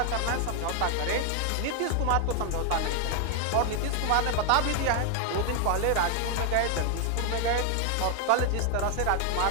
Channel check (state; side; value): different; both; correlation 0.00